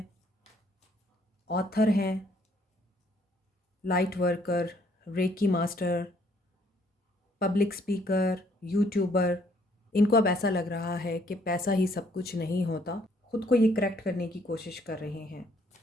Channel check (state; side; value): normal; both; correlation 0.66